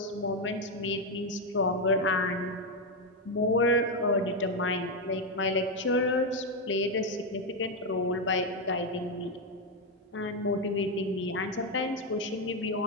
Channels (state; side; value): normal; both; correlation 0.05